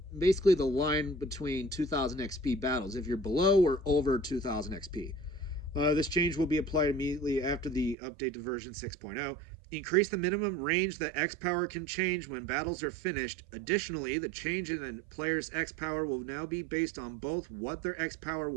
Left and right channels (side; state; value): left; drops out; at 8.0 s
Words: basically the line between 2,000 XP battles, if you're below or over 2,000 XP. This change will be applied immediately after the update to version 6.0. Increase the minimum range that X power can change when battles are finished. Additionally, the change in a player's X power will now be based on both what their X power